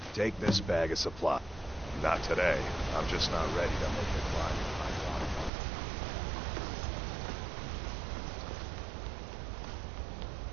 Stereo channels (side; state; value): left; drops out; at 5.5 s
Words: take this bag of supply. Not today. I'm just not ready to make the climb.